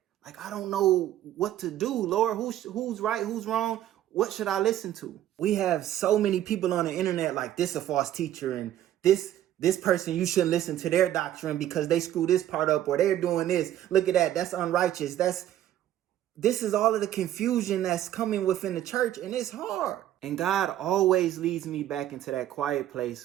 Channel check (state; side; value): quieter; left; 12.3 dB